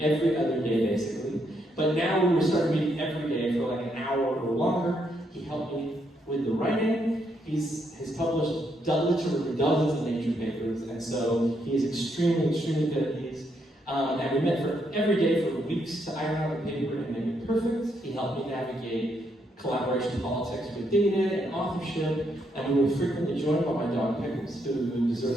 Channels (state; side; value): normal; both; correlation 0.76